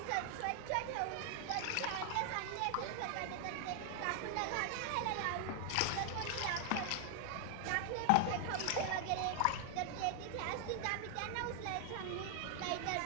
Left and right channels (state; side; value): different; both; correlation 0.00